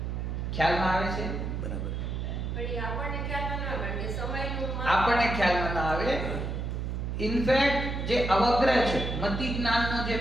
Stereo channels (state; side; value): noise; right; hum, 3 dB below the sound